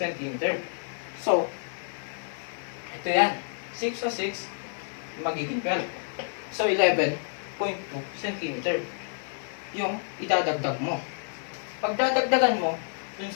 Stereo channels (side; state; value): right; silent; 56 dB below the other